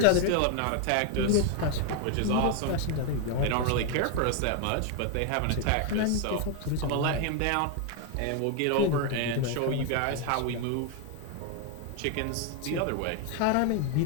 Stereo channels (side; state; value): both; different; correlation 0.01